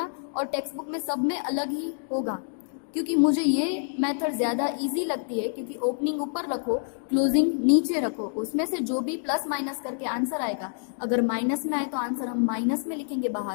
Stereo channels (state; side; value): silent; right; digital silence